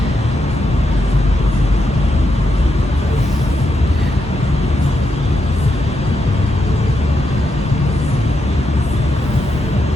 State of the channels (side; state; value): both; normal; correlation 0.83